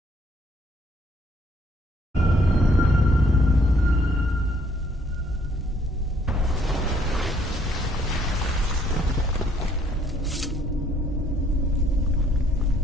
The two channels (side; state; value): both; normal; correlation 0.65